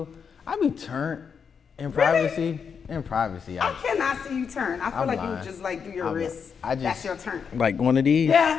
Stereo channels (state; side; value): quieter; right; 6.5 dB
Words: turned in Really? privacy. In privacy. I cannot see you turn. I feel I'm like lying. you just like do your wrists. That's your turn. Like one of these.